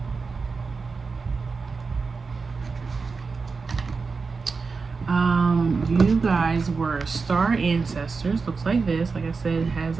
You guys were star ancestors. Looks like this. Like I said, it has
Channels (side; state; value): left; quieter; 4.6 dB